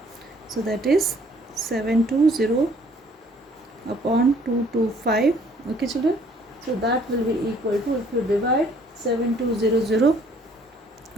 so that is 720 upon 225. Okay children, so that will be equal to, if you divide 7200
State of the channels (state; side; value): normal; both; correlation 0.60